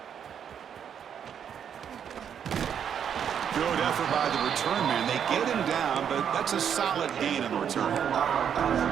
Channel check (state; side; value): quieter; left; 8.3 dB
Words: Good effort by the return man. They get him down, but that's a solid gain in the return.